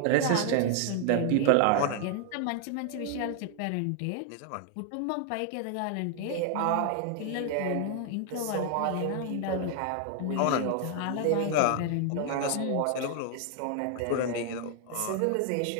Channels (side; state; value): both; different; correlation 0.00